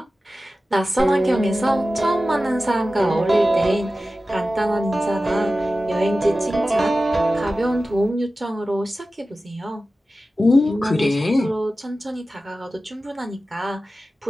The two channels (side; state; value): both; normal; correlation 0.95